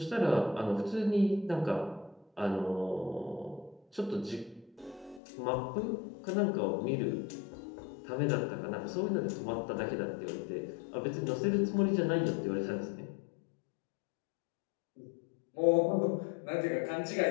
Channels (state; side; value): drops out; right; at 5.2 s